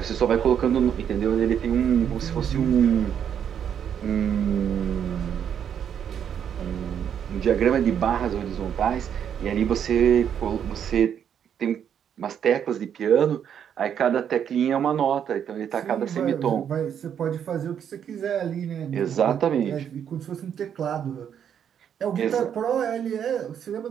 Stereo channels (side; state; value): left; quieter; 8.6 dB